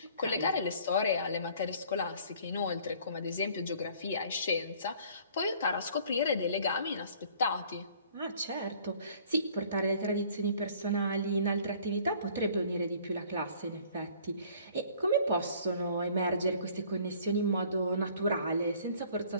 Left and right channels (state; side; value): inverted; both; correlation -0.54